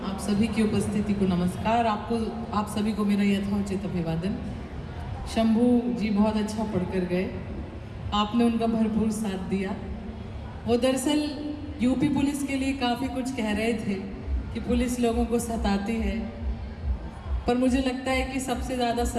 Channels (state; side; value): identical; both; correlation 1.00